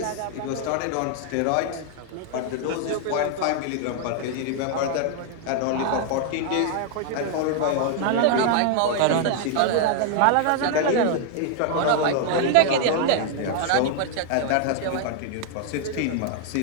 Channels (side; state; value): both; different; correlation 0.00